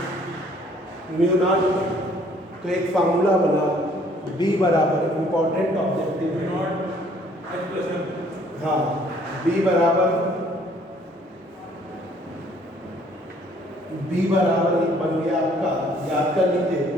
तो एक फार्मूला बना, बी बराबर इंपॉर्टेंट ऑब्जेक्टिव है, हाँ, बी बराबर एक बन गया आपका, याद कर लीजिए,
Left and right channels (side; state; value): both; normal; correlation 0.60